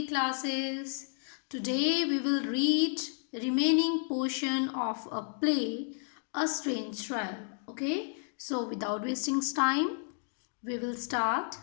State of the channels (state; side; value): silent; right; 56 dB below the other